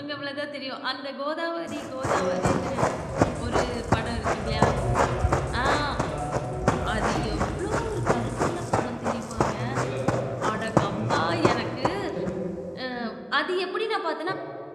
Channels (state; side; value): identical; both; correlation 1.00